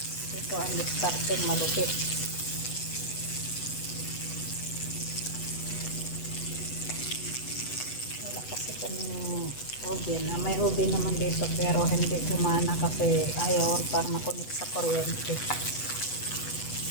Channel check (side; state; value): right; late; 8.1 ms